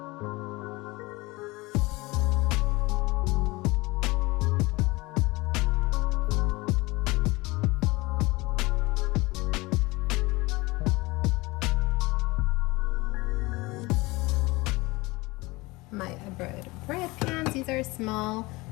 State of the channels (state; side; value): quieter; right; 22.5 dB